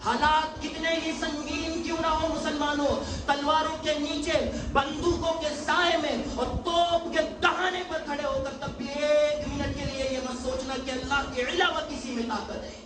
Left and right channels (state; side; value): identical; both; correlation 1.00